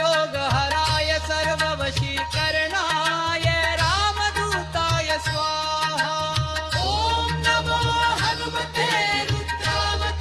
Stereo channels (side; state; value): both; identical; correlation 1.00